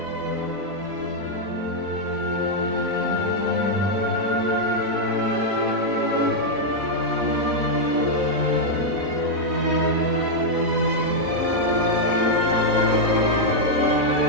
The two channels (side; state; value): left; late; 4.0 ms